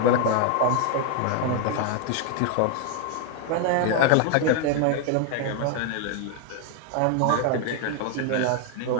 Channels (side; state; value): both; different; correlation 0.00